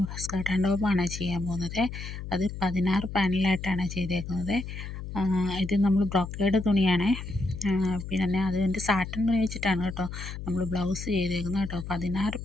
സ്കർട്ട് ആൻഡ് ടോപ്പാണ് ചെയ്യാൻ പോകുന്നത്. അത് 16 പാനലായിട്ടാണ് ചെയ്തേക്കുന്നത്. ഇത് നമ്മൾ ബ്രൊക്കേഡ് തുണിയാണേ. പിന്നെ അതിൻ്റെ സാറ്റൻ തുണി വെച്ചിട്ടാണ് കേട്ടോ നമ്മൾ ബ്ലൗസ് ചെയ്തേക്കുന്നത് കേട്ടോ. 16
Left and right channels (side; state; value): left; noise; hum, 8 dB below the sound